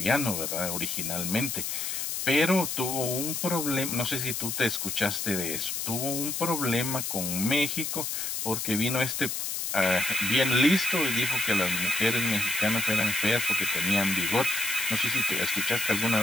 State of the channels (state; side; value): noise; left; hiss, 2 dB below the sound